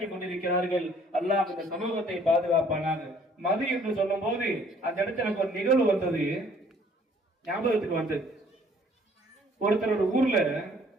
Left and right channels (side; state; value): both; normal; correlation 0.59